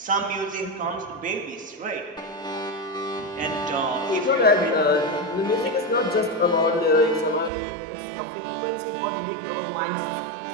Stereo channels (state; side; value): drops out; left; at 7.5 s